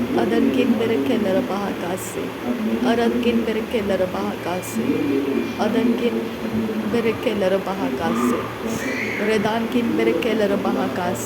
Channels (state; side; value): identical; both; correlation 1.00